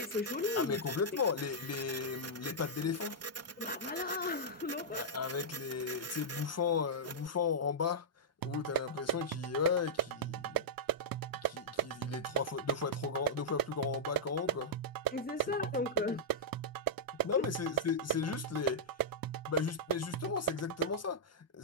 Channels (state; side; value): normal; both; correlation -0.11